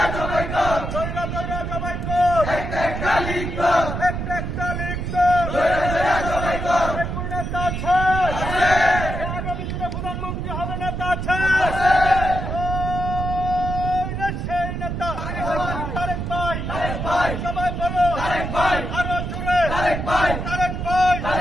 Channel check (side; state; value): right; noise; rumble, 4 dB below the sound